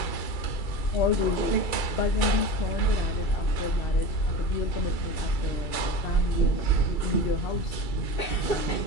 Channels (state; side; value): late; right; 2.3 ms